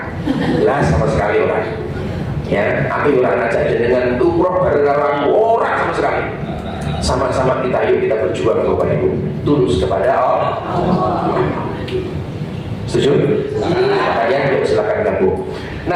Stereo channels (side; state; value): both; identical; correlation 1.00